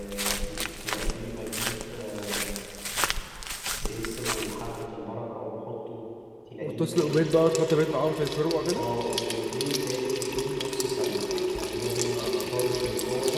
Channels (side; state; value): both; identical; correlation 1.00